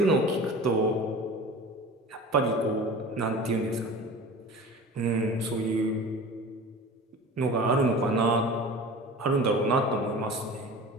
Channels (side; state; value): both; normal; correlation 0.37